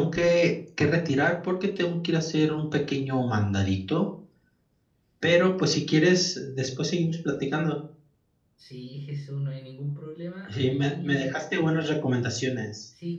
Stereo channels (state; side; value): identical; both; correlation 1.00